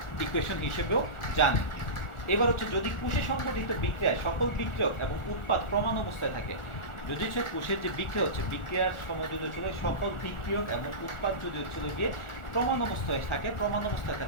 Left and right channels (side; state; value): right; late; 1.4 ms